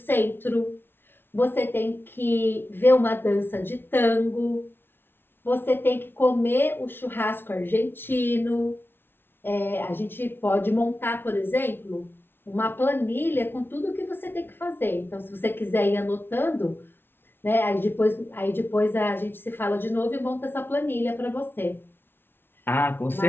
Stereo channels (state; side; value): late; right; 0.11 ms